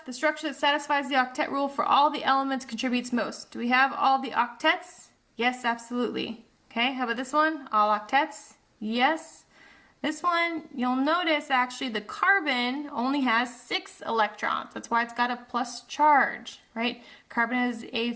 the structure that satisfies the octet rule for all the elements contributes most. Do we have all the octets? Yes, absolutely. Okay, how about this one? All octets? Yes. This one, you'll notice actually the carbon only has 6 electrons. That's why it's got a plus charge, right? Carbon has a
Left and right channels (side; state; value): both; identical; correlation 1.00